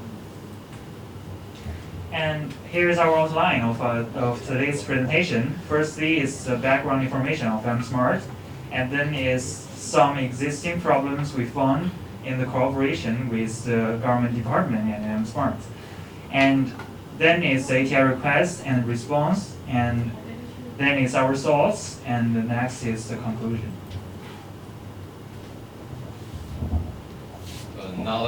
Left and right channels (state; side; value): identical; both; correlation 1.00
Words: And here's our outline of today's presentation. Firstly is the background information of iAMSmart, and then is some existing problems we found in the cooperation with the government department and iAMSmart. And then is the ATI request and response, and then is our results, and the next is the conclusion. Now